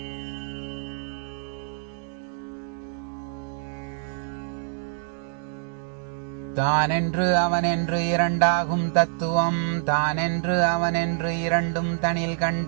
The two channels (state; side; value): silent; left; digital silence